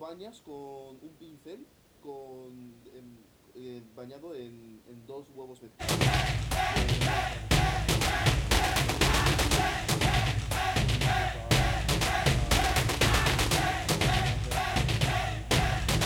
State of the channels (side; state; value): both; identical; correlation 1.00